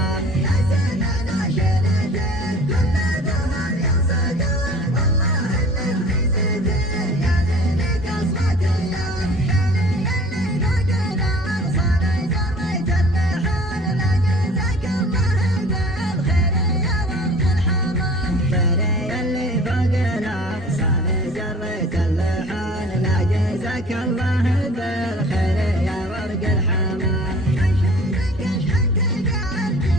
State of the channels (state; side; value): normal; both; correlation 0.47